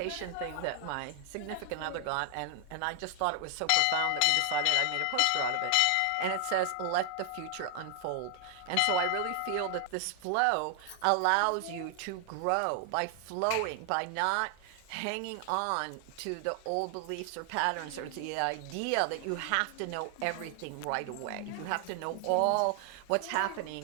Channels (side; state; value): both; different; correlation 0.00